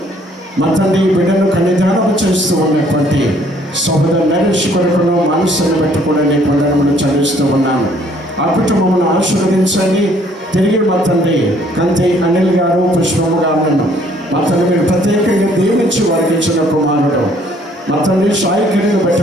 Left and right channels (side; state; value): both; normal; correlation 0.62